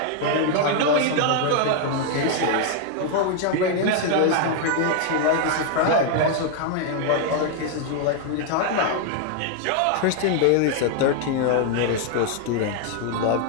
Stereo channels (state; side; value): different; both; correlation 0.00